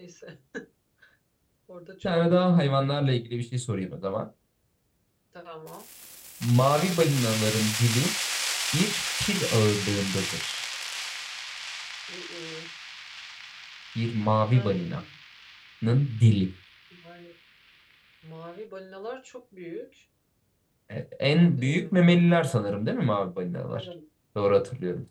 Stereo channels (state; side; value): identical; both; correlation 1.00